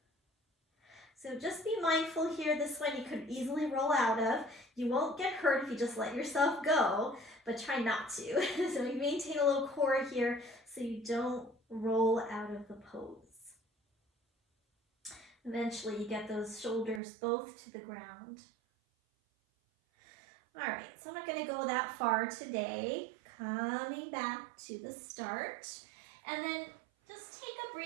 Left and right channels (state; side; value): drops out; left; at 17.0 s